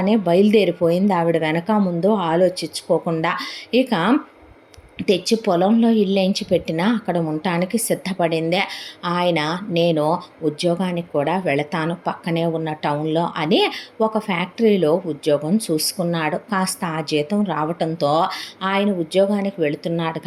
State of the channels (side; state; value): both; identical; correlation 1.00